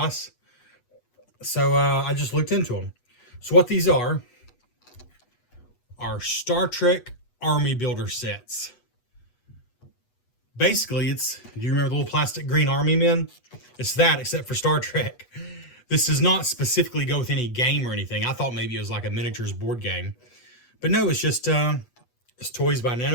So I just looked into them. So what these are Star Trek Army Builder sets. Basically, do you remember the little plastic green army men? It's that, except for Star Trek. This does not specifically go with any game or anything. I thought maybe it was like a miniatures board game. But no, it's just it's toys by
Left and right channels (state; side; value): late; right; 8.2 ms